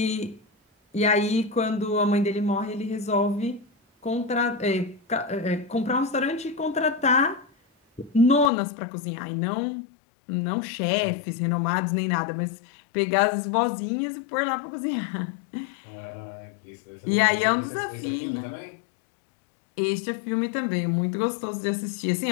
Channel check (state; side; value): drops out; right; at 8.5 s